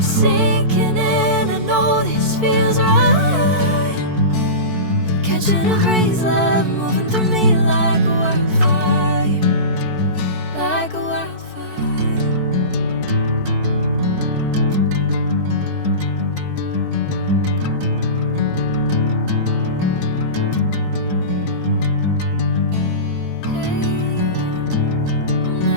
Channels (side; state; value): left; late; 4.6 ms